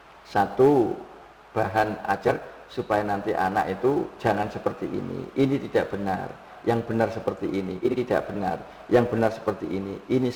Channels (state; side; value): identical; both; correlation 1.00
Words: satu bahan ajar supaya nanti anak itu jangan seperti ini tidak benar, yang benar seperti ini tidak benar, yang benar seperti ini